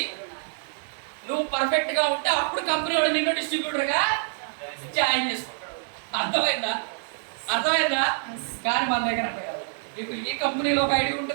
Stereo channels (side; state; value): left; silent; 61 dB below the other